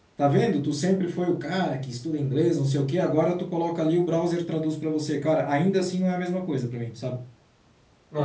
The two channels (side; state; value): both; identical; correlation 1.00